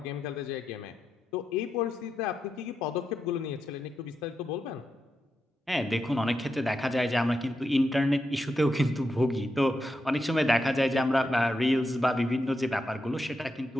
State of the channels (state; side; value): normal; both; correlation 0.85